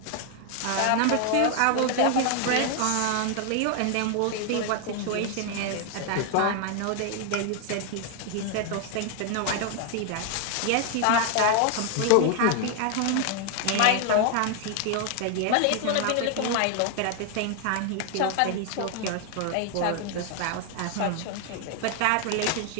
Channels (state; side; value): different; both; correlation 0.00